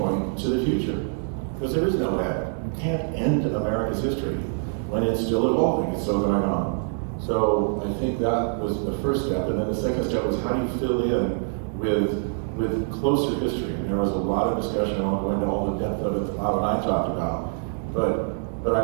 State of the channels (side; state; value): left; silent; digital silence